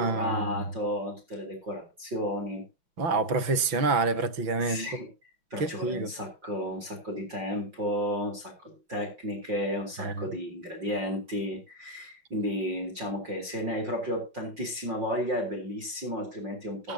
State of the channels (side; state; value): left; late; 5.9 ms